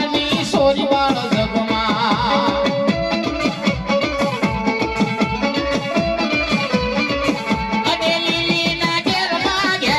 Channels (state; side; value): identical; both; correlation 1.00